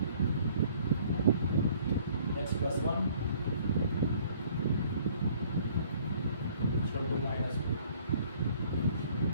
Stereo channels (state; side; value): inverted; both; correlation -0.58